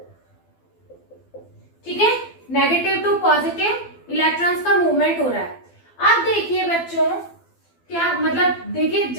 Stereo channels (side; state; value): right; late; 12 ms